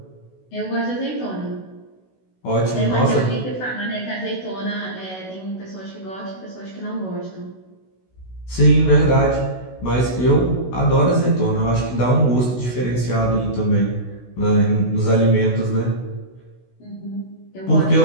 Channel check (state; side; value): late; right; 16 ms